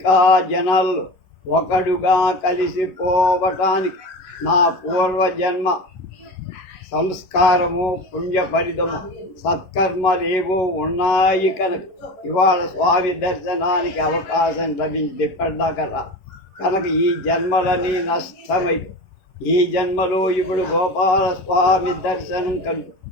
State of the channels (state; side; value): late; right; 10 ms